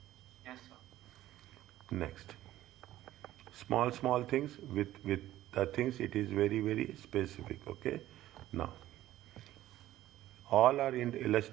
Yes, sir. Next. Small things with the things it is very specific. Okay. Now, all are in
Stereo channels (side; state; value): left; quieter; 14.3 dB